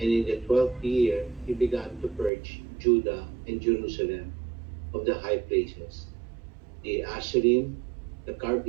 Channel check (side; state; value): left; drops out; at 2.3 s